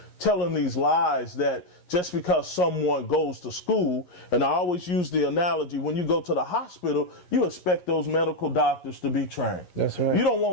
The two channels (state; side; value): late; right; 11 ms